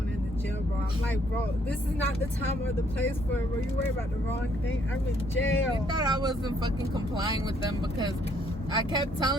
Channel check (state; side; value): normal; both; correlation 0.68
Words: in the jail, bro. I'm like, bro, this is not the time or the place for it, bro. You worry about the wrong thing. I'm in jail. He thought I wasn't fucking complying with them because I kept